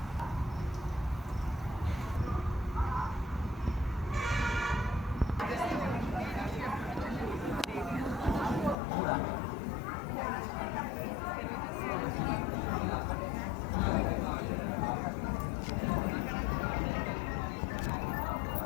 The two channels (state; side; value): drops out; right; at 8.8 s